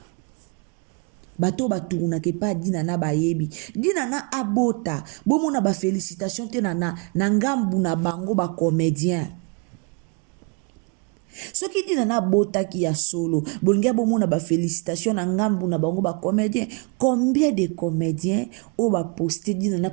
Bato tourna ke pa dinana bayebi. Dinana abota, bomona ba félicitations te na ngambu na bango ba comédien. Ce qui dinana bota ki ya solo, bolinga bomona ba félicitations na ngambu na bango ba comédien. Combien de comédiens o ba poster dinana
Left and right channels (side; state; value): left; quieter; 32.8 dB